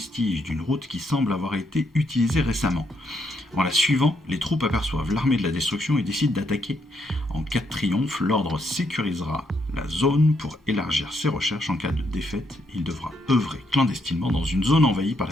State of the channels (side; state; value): both; normal; correlation 0.76